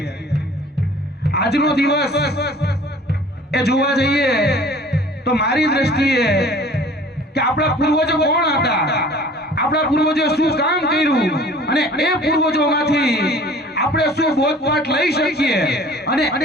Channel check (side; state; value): both; normal; correlation 0.48